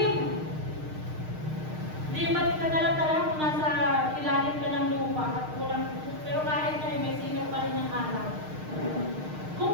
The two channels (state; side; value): late; left; 6.5 ms